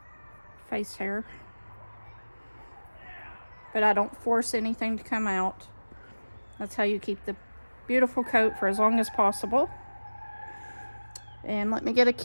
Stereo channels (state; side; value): inverted; both; correlation -1.00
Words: face hair. But I don't force anything to come out. That's how you keep the beautiful coat for as long as possible. And let me get a